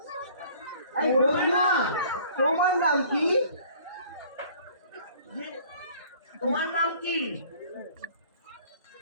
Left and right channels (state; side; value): inverted; both; correlation -0.52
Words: এই করবে বন্ধু, না? তোমার নাম কি? তোমার নাম কি?